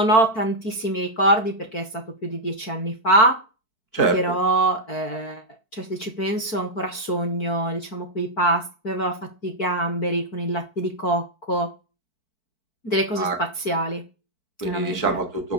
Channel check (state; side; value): late; right; 4.5 ms